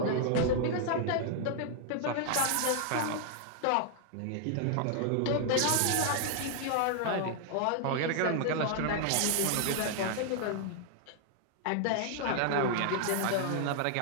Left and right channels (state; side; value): different; both; correlation 0.00